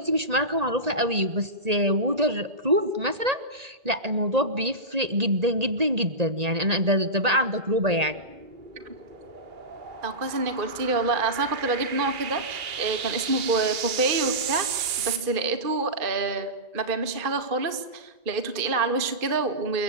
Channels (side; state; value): left; late; 2.3 ms